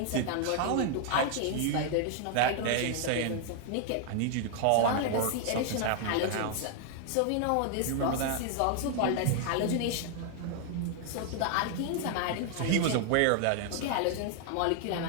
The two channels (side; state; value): both; different; correlation 0.00